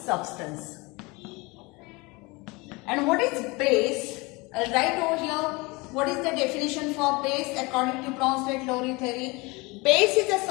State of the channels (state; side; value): quieter; right; 25.2 dB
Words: And what is base? I'll write over here what is the definition for base according to Bronsted-Lowry theory. Base is a